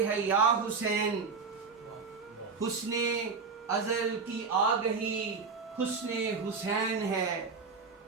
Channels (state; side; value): quieter; left; 4.9 dB